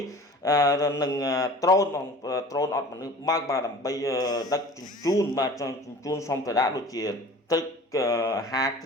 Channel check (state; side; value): normal; both; correlation 0.43